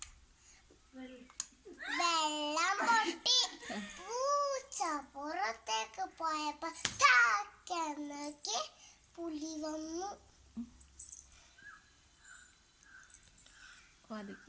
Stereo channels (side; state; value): both; identical; correlation 1.00